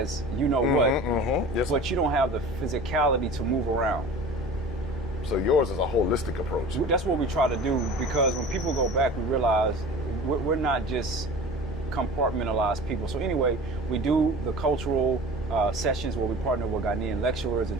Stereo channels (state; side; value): normal; both; correlation 0.39